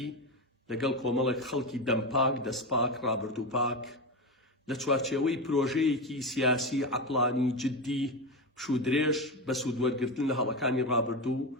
لەگەڵ کۆمەڵێک خەڵکی دەمپاک دەستپاک ڕابردووپاک لە چوارچێوەی پرۆژەیەکی سیاسی عەقڵانی جددی پشودرێژ بە سوودوەرگرتن لە هەڵەکانی ڕابردوو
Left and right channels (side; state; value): both; normal; correlation 0.17